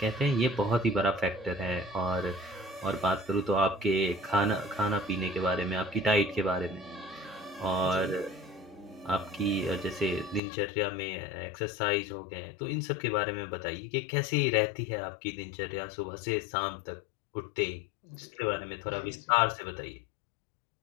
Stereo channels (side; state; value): right; drops out; at 10.4 s